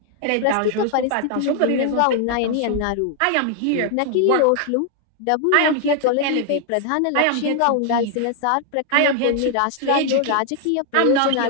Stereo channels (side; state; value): both; different; correlation 0.00